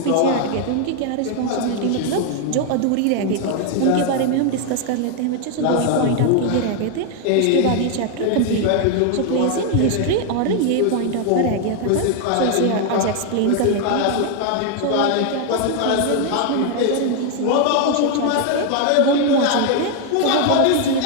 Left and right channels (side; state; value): both; different; correlation 0.01